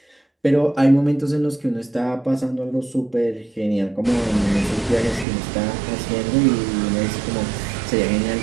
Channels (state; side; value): drops out; left; at 5.2 s